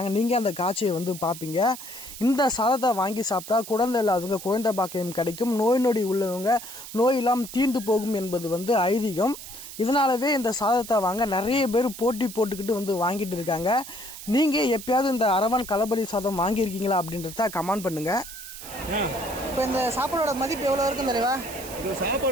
நீங்கள் அந்த காட்சியை பார்ப்பீங்க. இந்த சாதத்தை வாங்கி சாப்பிட்டா குழந்தை இல்லாதவங்க குழந்தை பாக்கியம் கிடைக்கும், நோய் நொடி உள்ளவங்க நோயெல்லாம் தீர்ந்து போகும் என்பது ஐதீகம். இதனாலவே இந்த சாதத்தை வாங்க நிறைய பேர் போட்டி போட்டுக்கிட்டு வாங்கிட்டு இருக்காங்க. நீங்கள் எப்பயாவது இந்த அரவன் களபலி சாதம் வாங்கியிருக்கீங்களா அப்படின்றத கமெண்ட் பண்ணுங்க. இப்போ இந்த சாப்பாடோட மதிப்பு எவ்வளோ இருக்கும் தலைவா? இந்த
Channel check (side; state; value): right; noise; hiss, 12 dB below the sound